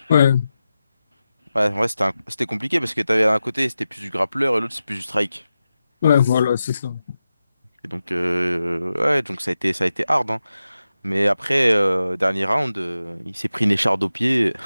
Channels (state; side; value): inverted; both; correlation -0.92